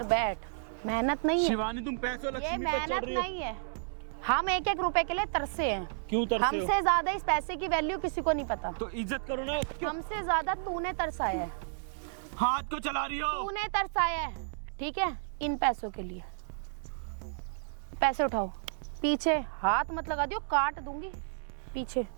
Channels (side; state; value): left; silent; digital silence